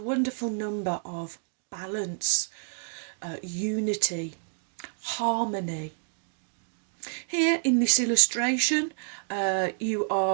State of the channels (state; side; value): silent; left; digital silence